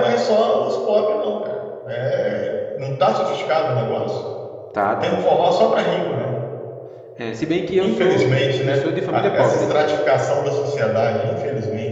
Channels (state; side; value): identical; both; correlation 1.00